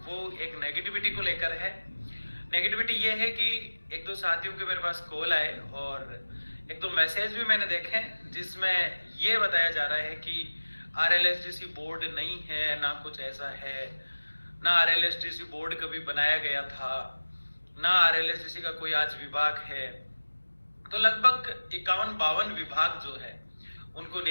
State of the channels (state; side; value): inverted; both; correlation -1.00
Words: वो एक नेगेटिविटी को लेकर है। नेगेटिविटी ये है कि एक दो साथियों के मेरे पास कॉल आए और एक दो मैसेज भी मैंने देखे जिसमें ये बताया जा रहा है कि आरएलएसडीसी बोर्ड नहीं है, ना कुछ ऐसा है, ना आरएलएसडीसी बोर्ड कभी बनाया गया था, ना आरएलएसडीसी का कोई आज विभाग है। तो लगभग 51-52 विभाग जो है उनको